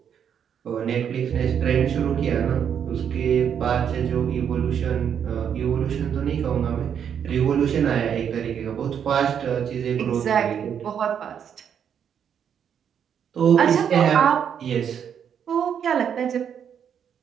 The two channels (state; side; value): quieter; left; 8.2 dB